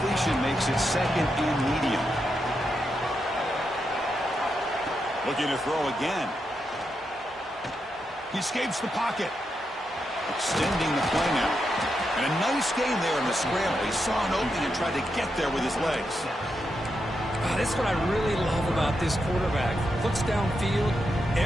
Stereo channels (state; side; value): normal; both; correlation 0.84